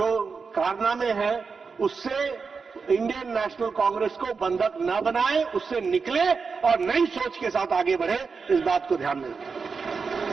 कारनामे हैं, उससे इंडियन नेशनल कांग्रेस को बंधक न बनाए, उससे निकले और नई सोच के साथ आगे बढ़े, इस बात को ध्यान में रखें।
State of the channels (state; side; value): quieter; left; 5.1 dB